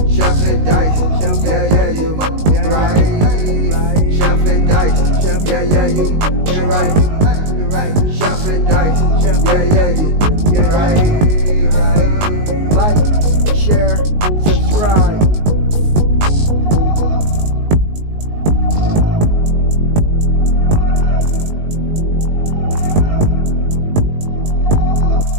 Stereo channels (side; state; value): left; late; 19 ms